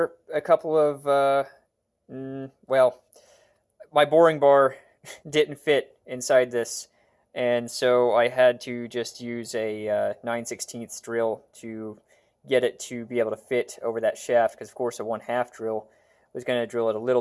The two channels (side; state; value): both; identical; correlation 1.00